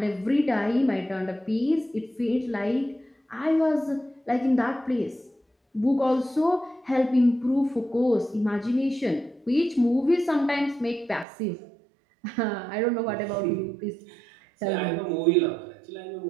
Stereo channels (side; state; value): left; drops out; at 11.2 s